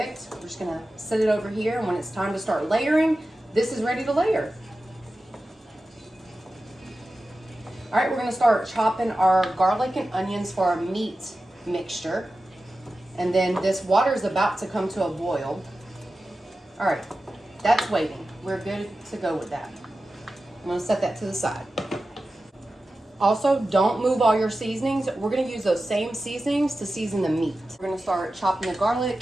We're just gonna set it over here, and when it's time to start layering, this is ready to layer. All right, we're gonna start chopping our garlic and onions for our meat mixture. And then this water is about to come to a boil. All right, that's waiting. We're good to go with that. I'm gonna set that to the side. Also, don't move all your seasonings. We're gonna use those same seasonings to season the meat. We're gonna start chopping the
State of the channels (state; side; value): normal; both; correlation 0.94